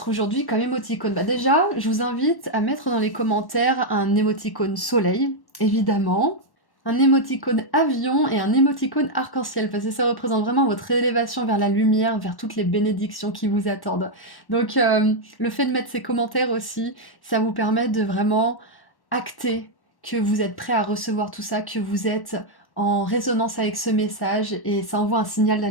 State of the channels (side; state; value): right; late; 1.1 ms